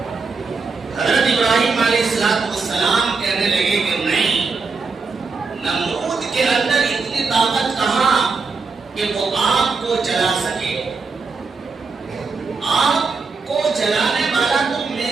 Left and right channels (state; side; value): quieter; left; 4.5 dB